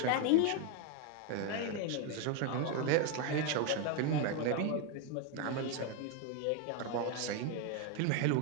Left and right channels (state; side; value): different; both; correlation 0.01